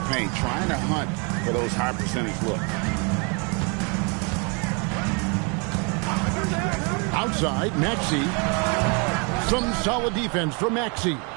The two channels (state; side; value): quieter; left; 34.0 dB